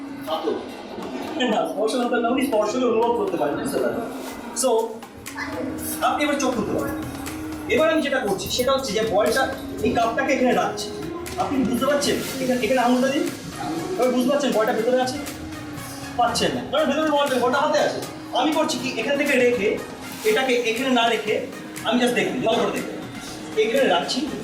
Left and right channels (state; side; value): identical; both; correlation 1.00